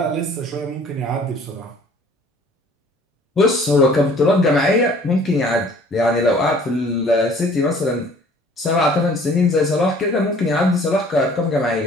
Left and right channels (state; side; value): normal; both; correlation 0.53